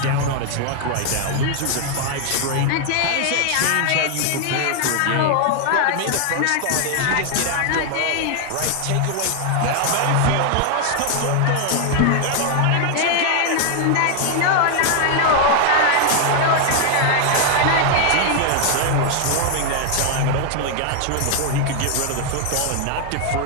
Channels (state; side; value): different; both; correlation 0.00